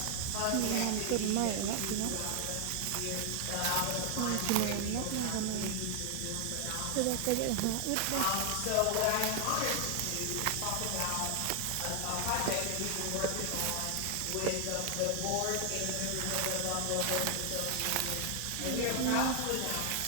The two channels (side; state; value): both; different; correlation 0.00